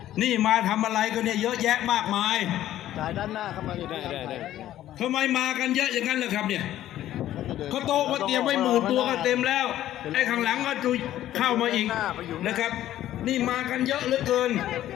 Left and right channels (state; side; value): quieter; right; 13.0 dB